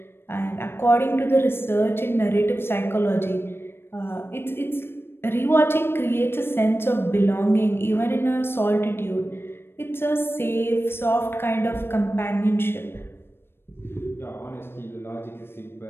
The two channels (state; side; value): late; right; 0.11 ms